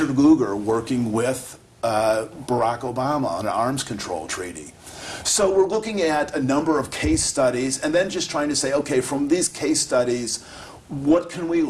Lugar working with Barack Obama on an arms control treaty. So we're looking at a number of case studies and then just trying to say, okay, from these case studies, what can we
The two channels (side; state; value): both; identical; correlation 1.00